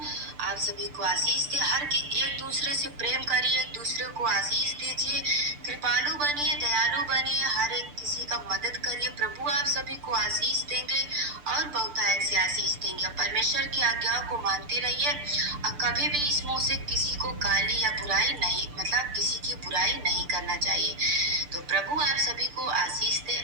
आप सभी को आशीष दे। हर एक दूसरे से प्रेम करिए, एक दूसरे को आशीष दीजिए, कृपालु बनिए, दयालु बनिए, हर एक किसी का मदद करिए। प्रभु आप सभी को आशीष देंगे और बहुतायत से आशीष देंगे। परमेश्वर की आज्ञाओं को मानते रहिए और कभी भी इस मुंह से किसी को गाली या बुराई नहीं, मतलब किसी की बुराई नहीं करना चाहिए। तो प्रभु आप सभी को आशीष दे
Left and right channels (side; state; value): left; late; 6.8 ms